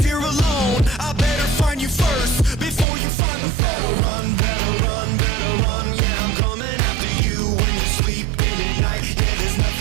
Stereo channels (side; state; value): left; drops out; at 2.9 s